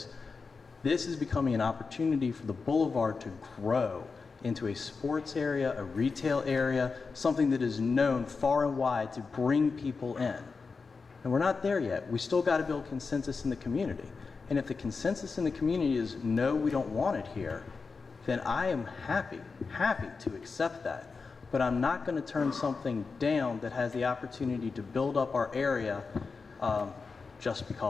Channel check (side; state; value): right; quieter; 4.7 dB